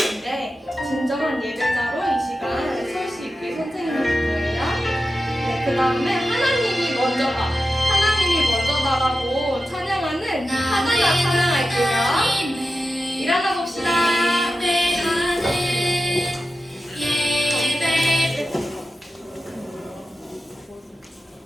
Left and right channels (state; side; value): normal; both; correlation 0.92